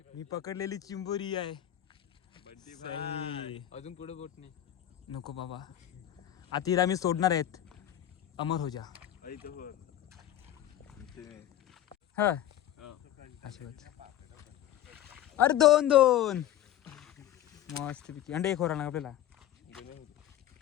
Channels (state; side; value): quieter; right; 12.3 dB